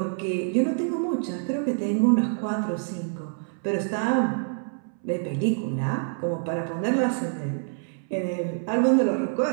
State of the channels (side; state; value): left; silent; 61 dB below the other